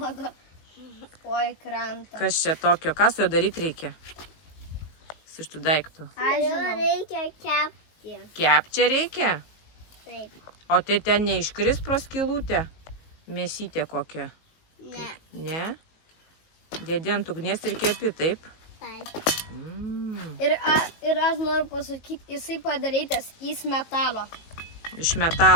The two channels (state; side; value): late; right; 19 ms